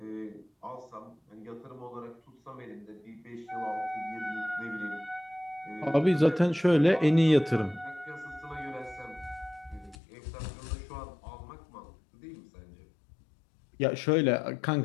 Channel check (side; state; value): right; drops out; at 10.0 s